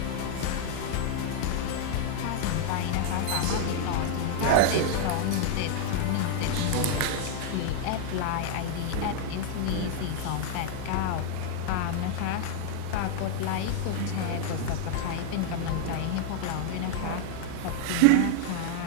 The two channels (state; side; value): different; both; correlation -0.01